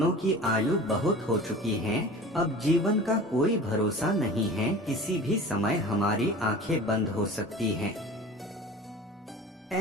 की आयु बहुत हो चुकी है, अब जीवन का कोई भरोसा नहीं है, किसी भी समय हमारी आंखें बंद हो सकती हैं।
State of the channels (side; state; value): both; normal; correlation 0.39